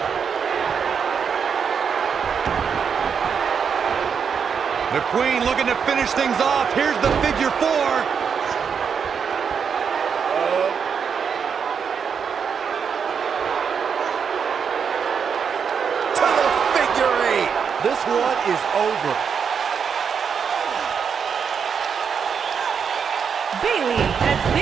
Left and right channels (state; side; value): quieter; left; 6.7 dB